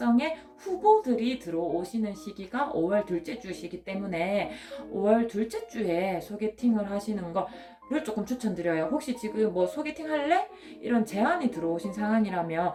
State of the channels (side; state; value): both; identical; correlation 1.00